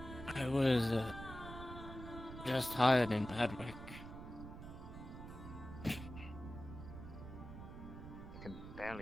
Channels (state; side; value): noise; right; rumble, 11 dB below the sound